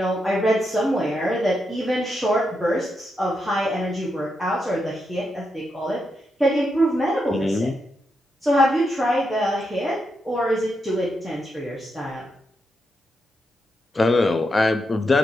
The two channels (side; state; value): both; normal; correlation 0.84